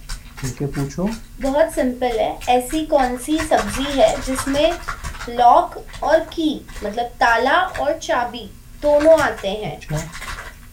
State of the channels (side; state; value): both; identical; correlation 1.00